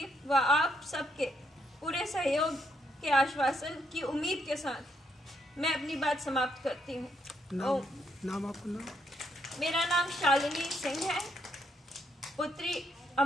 व आप सबके पूरे सहयोग के आश्वासन की उम्मीद के साथ मैं अपनी बात समाप्त करती हूँ। नाम आपका नाम? मेरा नाम शालिनी सिंह है, पुत्री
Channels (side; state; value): both; normal; correlation 0.75